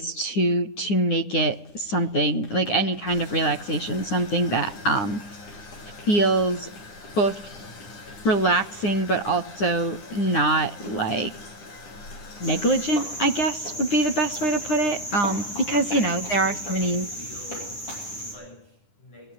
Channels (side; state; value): right; late; 9.9 ms